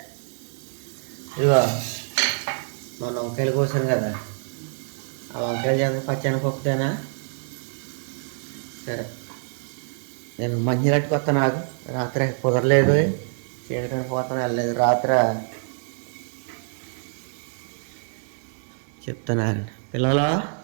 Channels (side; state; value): left; silent; digital silence